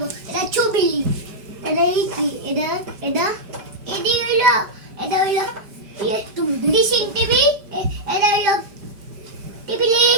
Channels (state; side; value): late; left; 5.0 ms